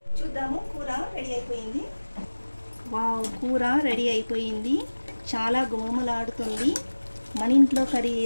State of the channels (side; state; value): both; inverted; correlation -1.00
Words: చూద్దాము, కూర రెడీ అయిపోయింది. వావ్, కూర రెడీ అయిపోయింది. చాలా గుమగుమలాడుతుంది. మన ఇంట్లో కర్రీ